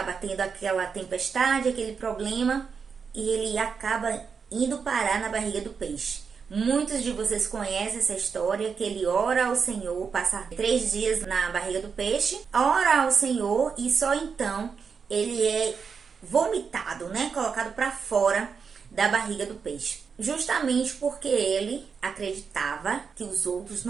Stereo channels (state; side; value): quieter; left; 5.9 dB